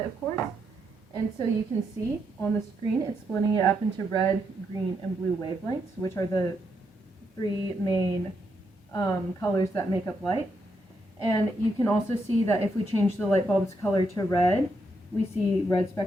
of course. And so you can see on the screen, it's splitting it up into red, green, and blue wavelengths, which are the three main colors that make up light. And you can also see that if we change the light bulb's color to red, we see red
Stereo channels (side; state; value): both; normal; correlation 0.80